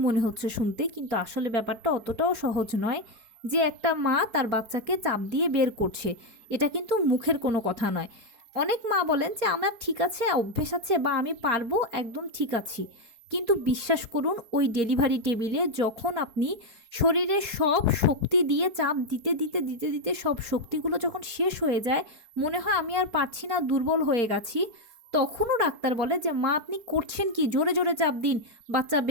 মনে হচ্ছে শুনতে, কিন্তু আসলে ব্যাপারটা অতটাও সহজ নয় যে একটা মা তার বাচ্চাকে চাপ দিয়ে বের করছে। এটা কিন্তু মুখের কোনো কথা নয়। অনেক মা বলেন যে আমার ঠিক আছে, অভ্যেস আছে, বা আমি পারবো, একদম ঠিক আছি। কিন্তু বিশ্বাস করুন, ওই ডেলিভারি টেবিলে যখন আপনি শরীরের সব শক্তি দিয়ে চাপ দিতে দিতে দিতে দিতে সব শক্তিগুলো যখন শেষ হয়ে যায়, মনে হয় আমি আর পারছি না, দুর্বল হয়ে গেছি, তখনও ডাক্তার বলে যে মা আপনি করছেন কি, জোরে জোরে চাপ দিন, বাচ্চা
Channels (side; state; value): left; late; 4.3 ms